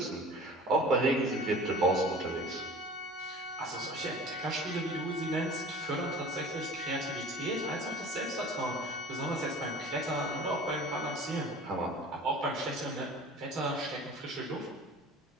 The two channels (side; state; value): both; normal; correlation 0.42